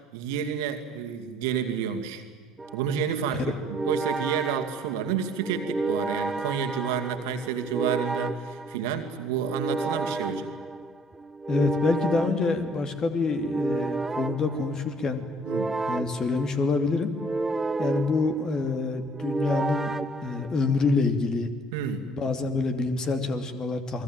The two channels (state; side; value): normal; both; correlation 0.58